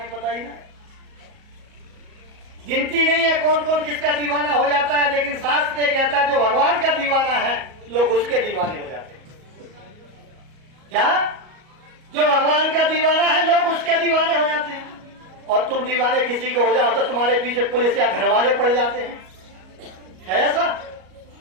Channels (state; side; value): late; left; 38 ms